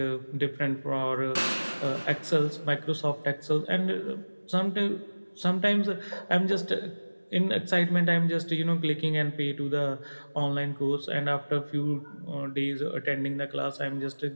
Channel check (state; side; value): inverted; both; correlation -1.00